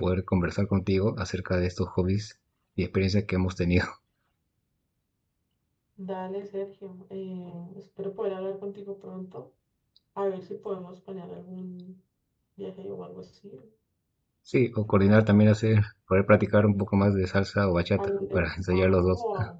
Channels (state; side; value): identical; both; correlation 1.00